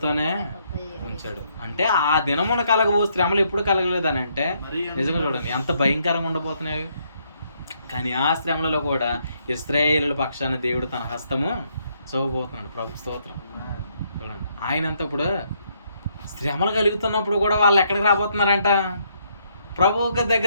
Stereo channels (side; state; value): both; inverted; correlation -0.72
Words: ఉంచాడు. అంటే ఆ దినమున కలగబో శ్రమలు ఎప్పుడు కలగలేదని అంటే నిజంగా చూడండి ఎంత భయంకరంగా ఉండబోతున్నాయి. కానీ ఆ శ్రమలలో కూడా ఇశ్రాయేలుల పక్షాన దేవుడు తన హస్తము చూపబోతున్నాడు. ప్రభు స్తోత్రం. చూడండి, ఆయనంత ఇప్పుడు శ్రమలు కలుగుతున్నప్పుడు కూడా వాళ్ళు ఎక్కడికి రాబోతున్నారంట? ప్రభు